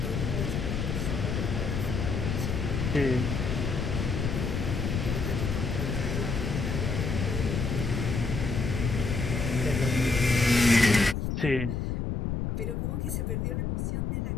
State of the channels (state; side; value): noise; left; rumble, 1 dB below the sound